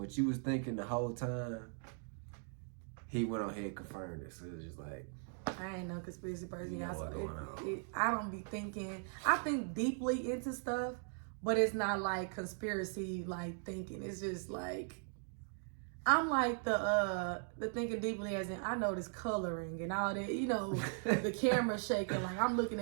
you was thinking the whole time, he went on ahead and confirmed it. So it was just like, I ain't no conspiracy person. You know what's going on. I don't be thinking. I think deeply into stuff, but it's not like conspiracy like thinking. It's just like I'm like the thinking deeply as in I notice coloring and all that. You know, the camera shaking. Like I'm looking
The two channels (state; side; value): silent; left; 52 dB below the other